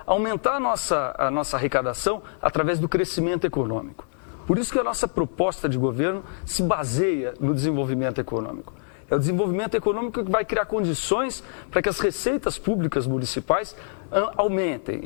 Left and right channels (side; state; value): right; silent; digital silence